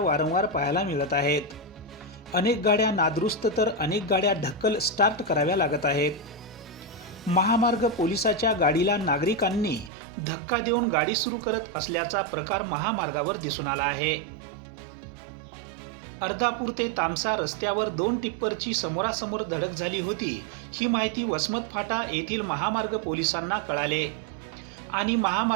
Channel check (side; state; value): left; drops out; at 9.9 s